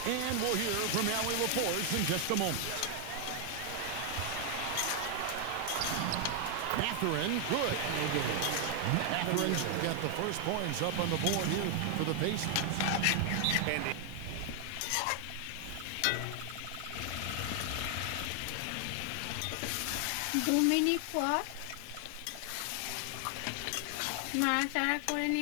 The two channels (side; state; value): both; different; correlation 0.00